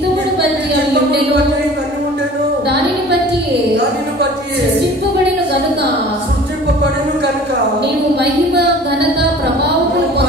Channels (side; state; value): both; normal; correlation 0.45